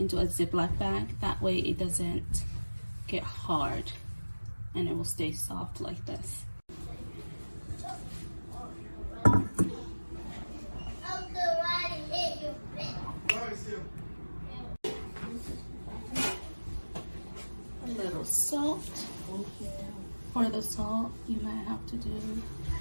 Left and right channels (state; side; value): inverted; both; correlation -1.00